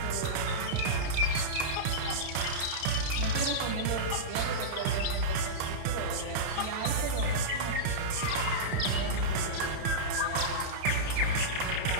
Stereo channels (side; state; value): left; late; 31 ms